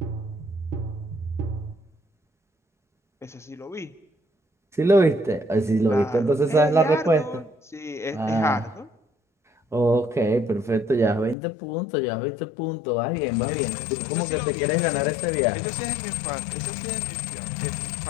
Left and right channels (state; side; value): drops out; right; at 11.4 s